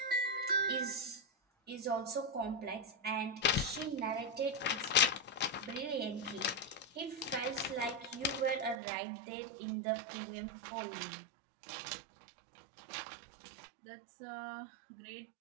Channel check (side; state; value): left; drops out; at 8.8 s